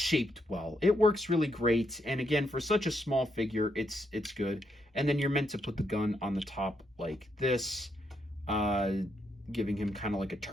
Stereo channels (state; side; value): normal; both; correlation 0.78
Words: well. It works really great. And again, for such a small figure, it's good. And then you're meant to put the gun on the top like this, giving him kind of like a